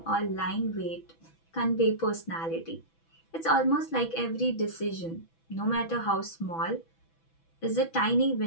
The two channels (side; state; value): right; late; 6.1 ms